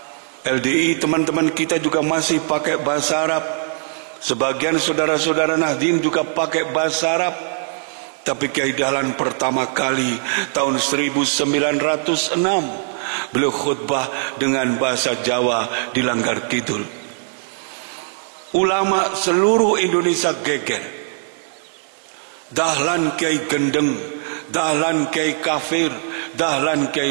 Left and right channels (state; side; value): silent; left; 61 dB below the other